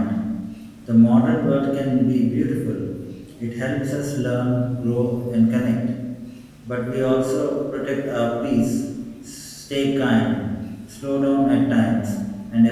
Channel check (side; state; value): both; identical; correlation 1.00